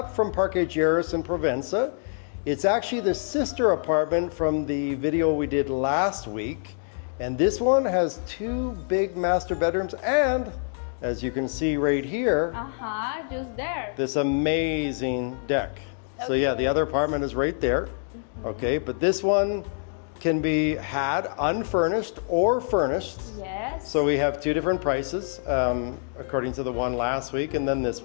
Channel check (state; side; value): silent; right; digital silence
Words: from Parque Lleras in Provenza. It's actually the sister apartment from the video we did last week. And this one has two big master bedrooms and, as you can see right here, Just there. this amazing deck. So yeah, the other apartment is right there. Okay, but this one can be had unfurnished or furnished. Yes. So we have two different prices, according to the one last week and then this